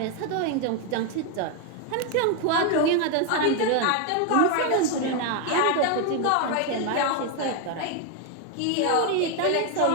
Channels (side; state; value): both; different; correlation 0.01